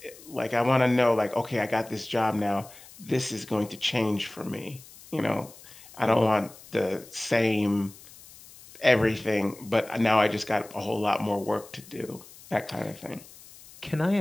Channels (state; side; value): noise; left; hiss, 20 dB below the sound